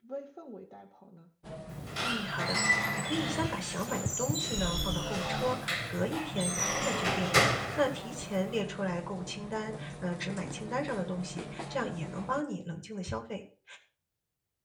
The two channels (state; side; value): identical; both; correlation 1.00